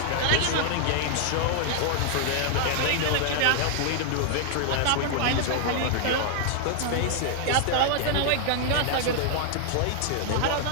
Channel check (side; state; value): both; different; correlation 0.00